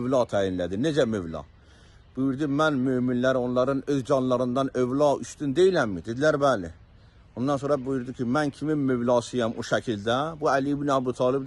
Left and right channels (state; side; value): identical; both; correlation 1.00